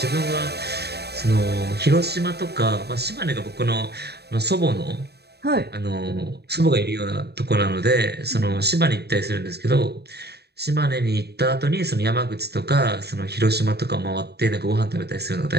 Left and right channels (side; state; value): left; late; 0.48 ms